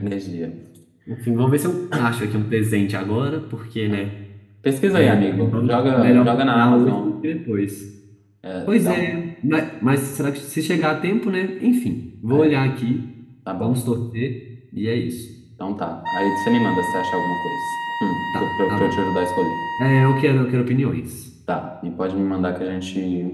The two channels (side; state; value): both; identical; correlation 1.00